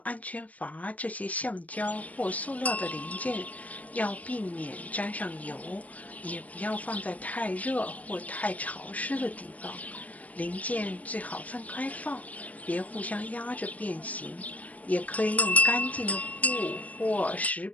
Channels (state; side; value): late; right; 0.071 ms